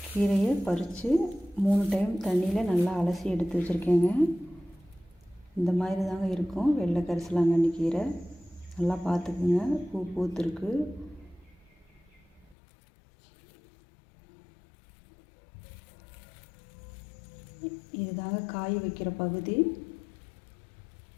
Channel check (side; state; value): right; drops out; at 12.6 s